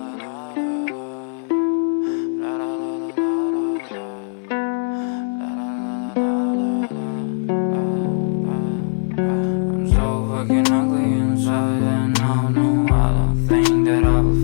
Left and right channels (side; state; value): right; silent; 65 dB below the other